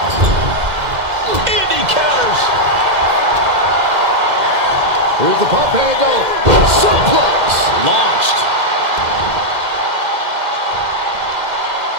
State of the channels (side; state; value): left; late; 2.1 ms